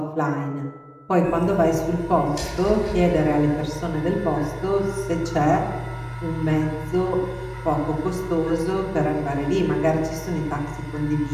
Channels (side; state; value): both; identical; correlation 1.00